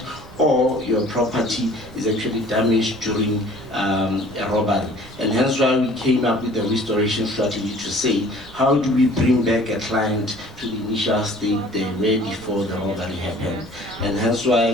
or your property is actually damaged during a robbery. And hence why we came up with a restoration strategy to say, how do we bring back a client to the initial state they were before the robbery happened? And hence why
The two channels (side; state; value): right; noise; rumble, 20 dB below the sound